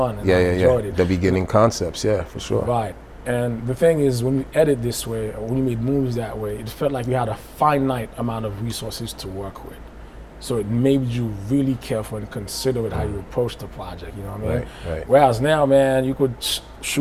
and I enjoyed it. The beginning concepts, yeah, for sure. Right. And the thing is, when you edit this way, or when you made movies that way, it felt like you had a finite amount of resources to work with. So it made you really careful and considerate how you approach the project, you know what I mean? Right. Whereas now, man, you could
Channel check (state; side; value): identical; both; correlation 1.00